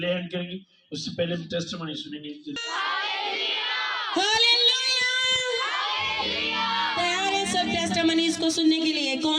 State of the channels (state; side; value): identical; both; correlation 1.00